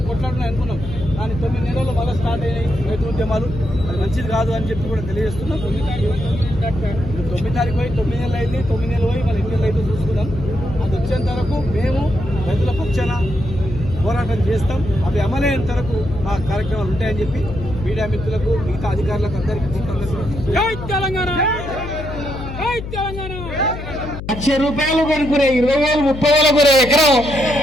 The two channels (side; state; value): left; noise; hum, 9 dB below the sound